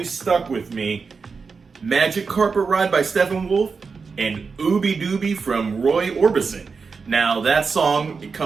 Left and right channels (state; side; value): quieter; left; 5.0 dB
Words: stuck with me: Magic Carpet Ride by Steppenwolf and Ooby Dooby from Roy Orbison. Now that song, it